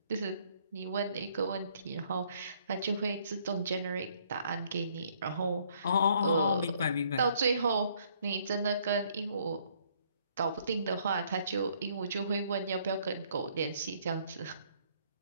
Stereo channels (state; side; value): inverted; both; correlation -0.65